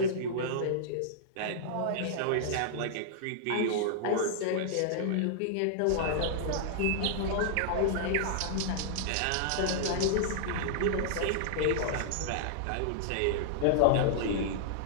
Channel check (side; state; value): both; different; correlation -0.01